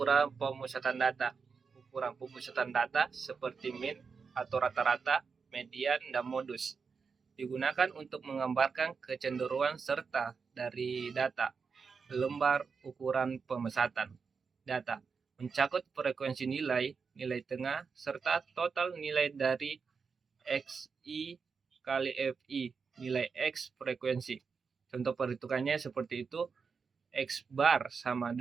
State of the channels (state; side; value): quieter; left; 5.4 dB